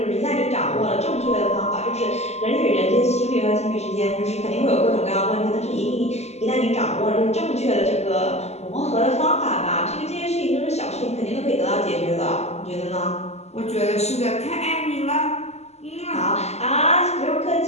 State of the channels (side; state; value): right; late; 0.32 ms